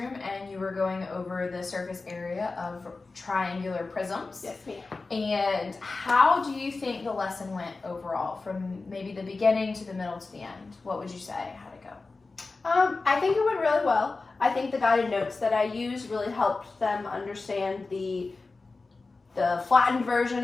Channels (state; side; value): quieter; right; 3.8 dB